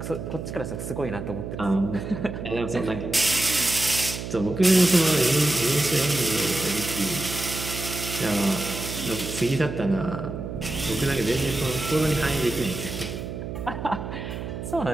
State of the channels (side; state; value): right; noise; hum, 7 dB below the sound